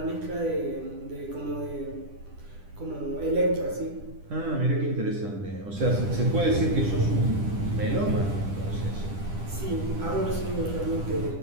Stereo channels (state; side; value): late; left; 10 ms